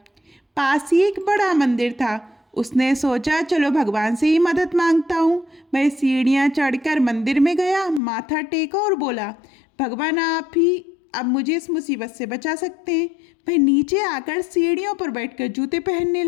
पास ही एक बड़ा मंदिर था। उसने सोचा, चलो भगवान से ही मदद मांगता हूँ। वह सीढ़ियाँ चढ़कर मंदिर में गया, माथा टेका और बोला, भगवान आप ही अब मुझे इस मुसीबत से बचा सकते हैं। वह नीचे आकर सीढ़ियों पर बैठकर जूते पहनने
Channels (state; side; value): drops out; right; at 8.0 s